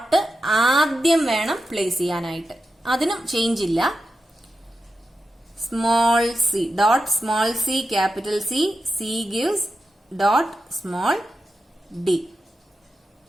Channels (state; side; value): normal; both; correlation 0.90